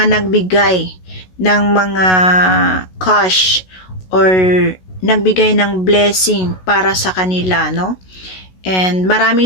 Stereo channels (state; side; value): late; right; 16 ms